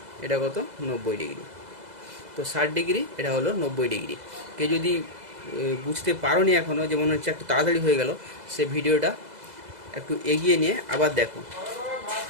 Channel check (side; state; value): left; late; 2.0 ms